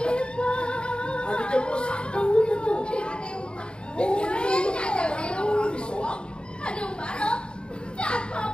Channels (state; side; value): late; right; 0.052 ms